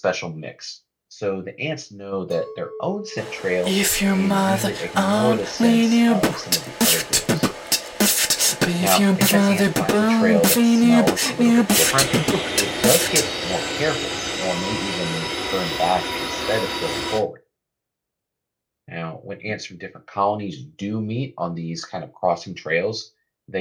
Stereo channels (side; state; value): both; identical; correlation 1.00